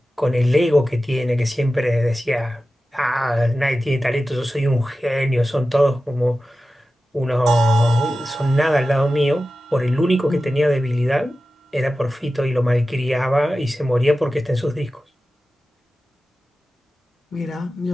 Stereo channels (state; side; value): normal; both; correlation 0.94